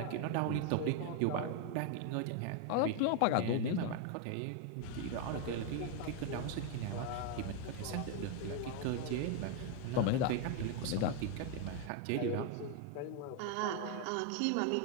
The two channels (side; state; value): both; different; correlation 0.01